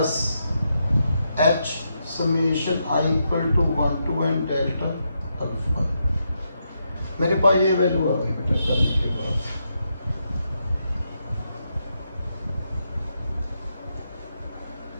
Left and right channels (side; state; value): both; inverted; correlation -0.82